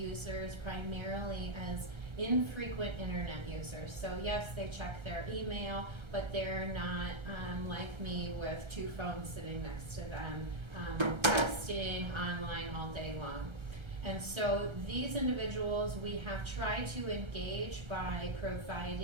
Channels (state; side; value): late; left; 1.3 ms